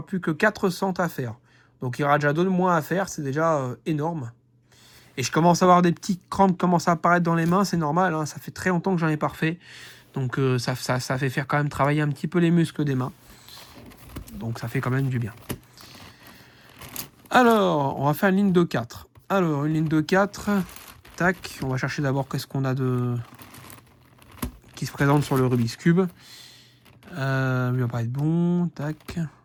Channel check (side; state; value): both; identical; correlation 1.00